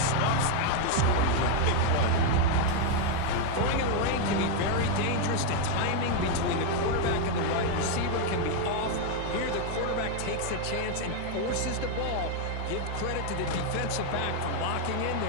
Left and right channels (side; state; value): both; different; correlation 0.01